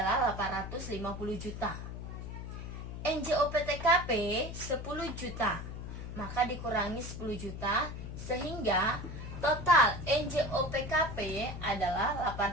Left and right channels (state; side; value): noise; left; hum, 8 dB below the sound